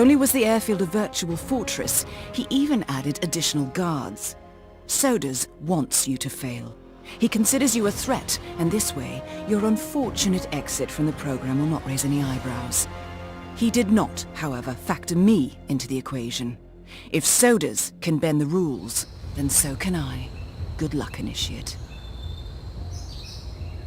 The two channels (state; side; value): identical; both; correlation 1.00